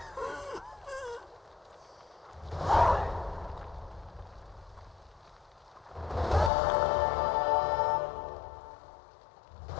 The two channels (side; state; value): right; drops out; at 6.5 s